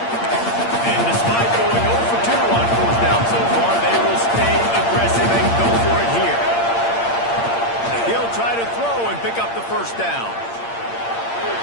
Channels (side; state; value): right; late; 8.7 ms